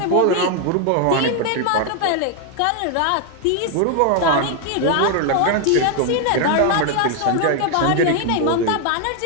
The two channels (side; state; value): both; different; correlation 0.01